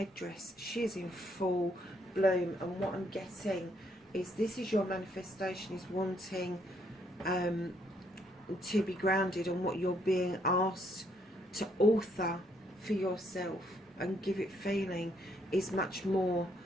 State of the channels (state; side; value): normal; both; correlation 0.71